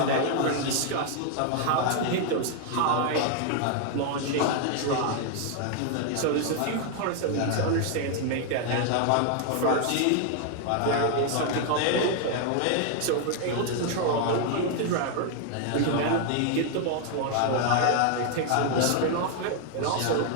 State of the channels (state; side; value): different; both; correlation 0.00